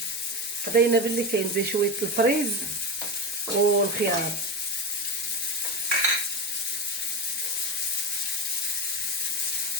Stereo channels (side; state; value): both; normal; correlation 0.20